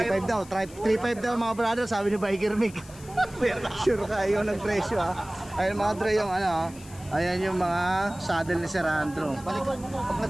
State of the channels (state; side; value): noise; left; hiss, 20 dB below the sound